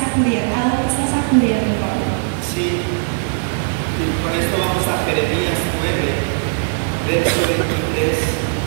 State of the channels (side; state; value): left; silent; digital silence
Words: ¿A dónde estás acudiendo, Pablo? Sí, y con esto vamos a Jeremías 9, verso 23,